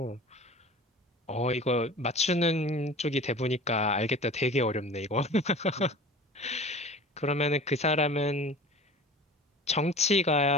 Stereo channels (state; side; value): normal; both; correlation 0.40